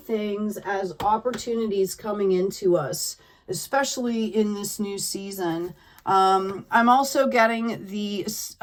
as opportunities coming into us, especially in this new season. I'm also getting the,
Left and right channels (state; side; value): identical; both; correlation 1.00